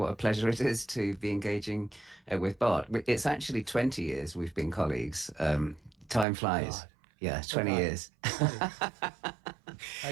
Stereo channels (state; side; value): drops out; left; at 6.2 s